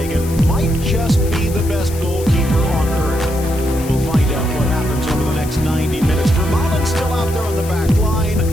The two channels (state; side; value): noise; left; hiss, 15 dB below the sound